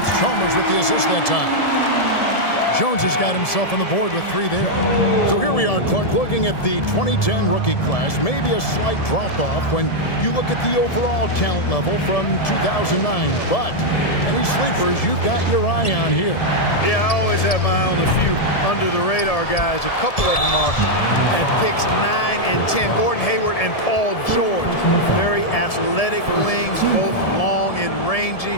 it's Chalmers with the assist that time. Jones has got himself on the board with three there. So here we are, Clark, looking at the 2010 rookie class. Maybe a slight drop-off when you look at the overall talent level from 2009. But any sleepers you've got your eye on here? Yeah, I always have my eye on a few under-the-radar guys. A couple of them are at picks 9 and 10. Gordon Hayward and Paul George. Very athletic wings, both long and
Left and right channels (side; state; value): right; late; 1.7 ms